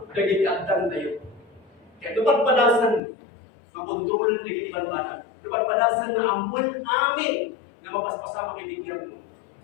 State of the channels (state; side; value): drops out; right; at 3.0 s